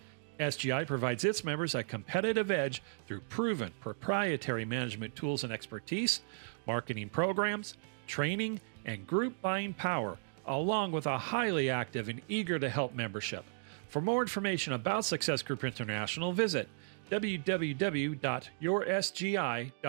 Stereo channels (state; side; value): silent; left; digital silence